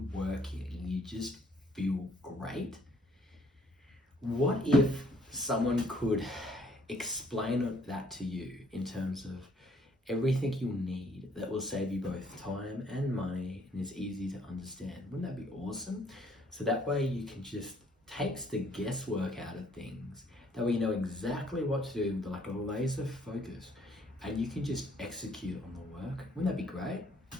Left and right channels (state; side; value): normal; both; correlation 0.63